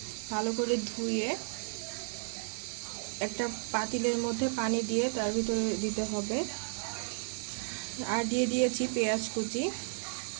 ভালো করে ধুয়ে একটা পাতিলের মধ্যে পানি দিয়ে তার ভিতরে দিতে হবে। আর দিয়ে দিয়েছি পেঁয়াজ কুচি,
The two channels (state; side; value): silent; left; 56 dB below the other